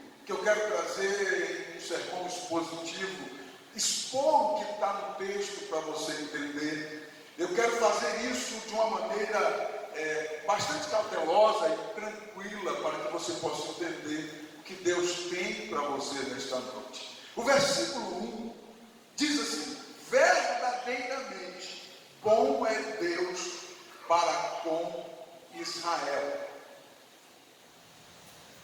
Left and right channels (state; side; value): identical; both; correlation 1.00